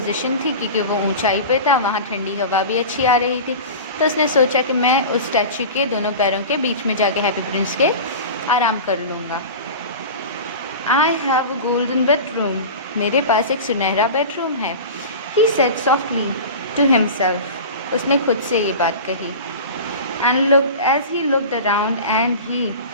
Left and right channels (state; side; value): inverted; both; correlation -0.32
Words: थी क्योंकि वो ऊंचाई पे था, वहाँ ठंडी हवा भी अच्छी आ रही थी। तो उसने सोचा कि मैं उस स्टैच्यू के दोनों पैरों के बीच में जाके हैप्पी प्रिंस के आराम कर लूँगा। I have a golden bedroom. मेरे पास एक सुनहरा बेडरूम है. He said softly to himself. उसने खुद से ये बात कही. And looked as he looked around and he